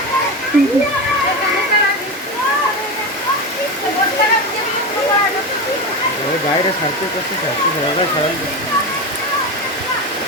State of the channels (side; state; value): both; normal; correlation 0.20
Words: বাইরে ছাড়তে করতে ছাড়তে সবাই সবাই